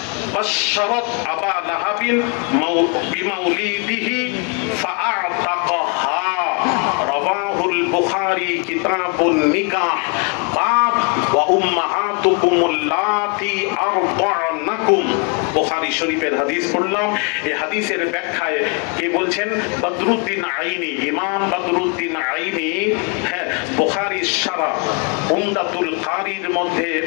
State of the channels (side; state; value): right; quieter; 32.7 dB